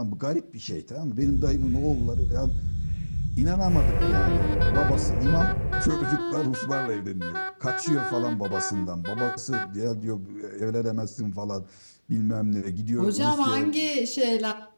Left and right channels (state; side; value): inverted; both; correlation -1.00